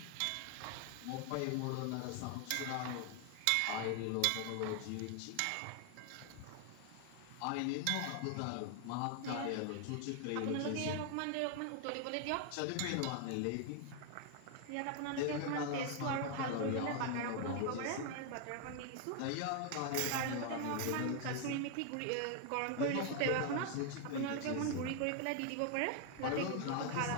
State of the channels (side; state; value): both; different; correlation 0.00